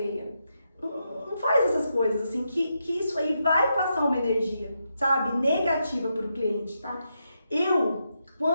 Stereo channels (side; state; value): both; inverted; correlation -0.83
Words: Não faz essas coisas, assim, que isso aí vai passar uma energia, sabe? Negativa pro cliente, tá?